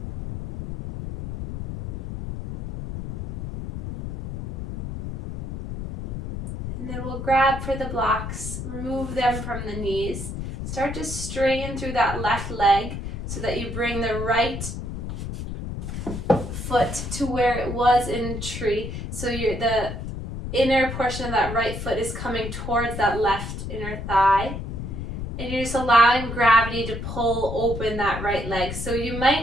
And then we'll grab for the blocks, remove them from the knees. Start to straighten through that left leg so that you bring the right foot to where it was in tree. So the inner portion of that right foot is coming towards that left inner thigh. And you're just allowing gravity to pull open that right leg. So you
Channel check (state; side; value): noise; left; rumble, 6 dB below the sound